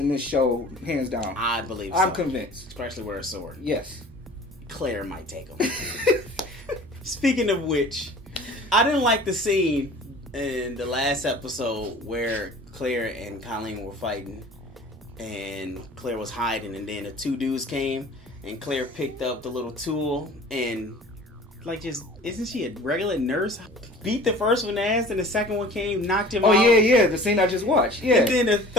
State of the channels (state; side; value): normal; both; correlation 0.45